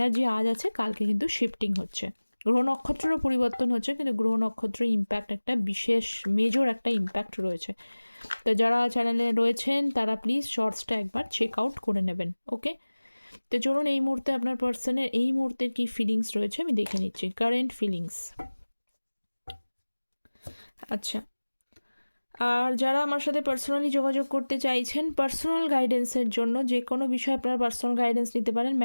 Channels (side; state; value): both; inverted; correlation -1.00